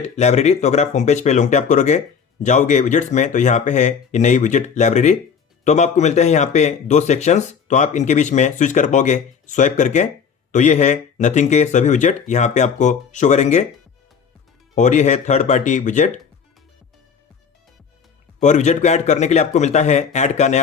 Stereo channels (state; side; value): quieter; right; 6.5 dB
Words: लाइब्रेरी। तो अगर आप होम पेज पे लॉन्ग टैप करोगे, जाओगे विजेट्स में, तो यहाँ पे है ये नई विजेट लाइब्रेरी। तो अब आपको मिलते हैं यहाँ पे दो सेक्शंस, तो आप इनके बीच में स्विच कर पाओगे स्वाइप करके। तो ये है नथिंग के सभी विजेट यहाँ पे आपको शो करेंगे और ये है थर्ड पार्टी विजेट। और विजेट को ऐड करने के लिए आपको मिलता है ऐड का